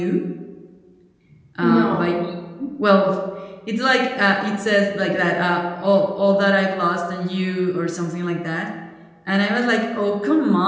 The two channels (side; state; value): both; identical; correlation 1.00